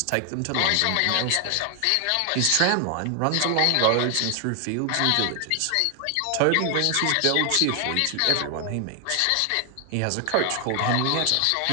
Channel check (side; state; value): both; different; correlation 0.00